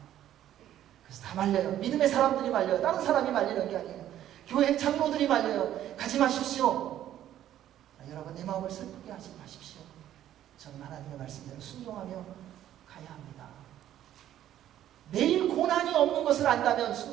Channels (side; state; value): left; quieter; 11.9 dB